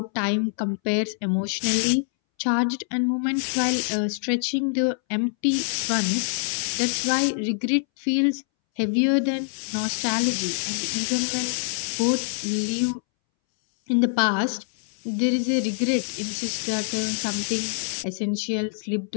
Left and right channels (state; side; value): silent; right; 62 dB below the other